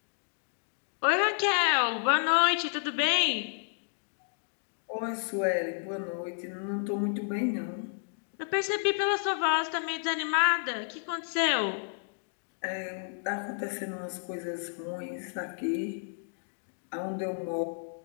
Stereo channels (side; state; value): right; silent; digital silence